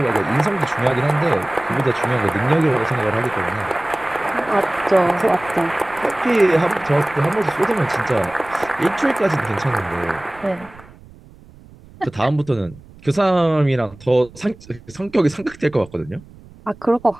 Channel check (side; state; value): right; noise; rumble, 22 dB below the sound